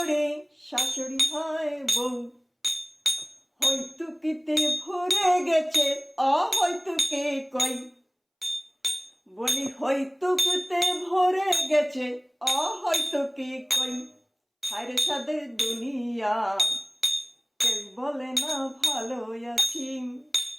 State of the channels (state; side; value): identical; both; correlation 1.00